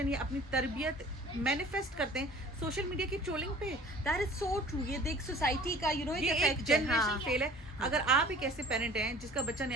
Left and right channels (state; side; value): normal; both; correlation 0.47